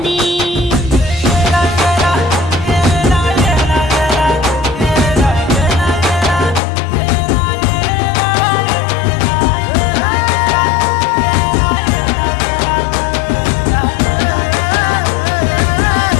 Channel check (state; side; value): drops out; right; at 6.6 s